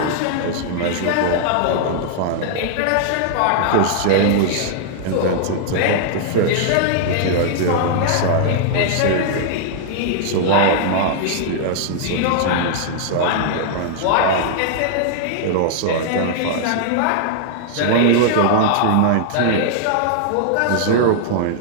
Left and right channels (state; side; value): different; both; correlation -0.01